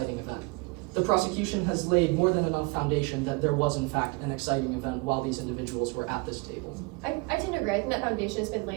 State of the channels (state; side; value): quieter; left; 26.9 dB